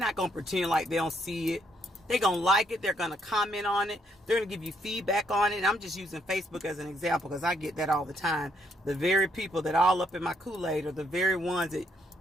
going to pretend like they don't see it. They're going to like it. They're going to comment on it. They're going to give you feedback on it. And I'm just using Facebook as an example because I get that all the time. The very people that all up in my Kool-Aid are the very ones that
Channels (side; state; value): both; normal; correlation 0.73